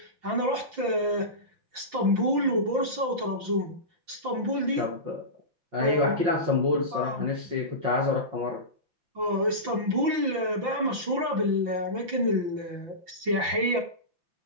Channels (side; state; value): left; late; 5.8 ms